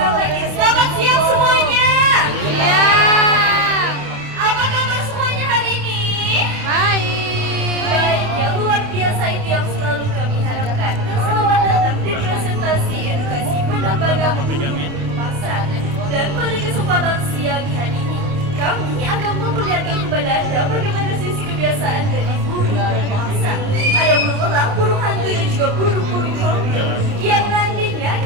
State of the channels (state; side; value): late; left; 28 ms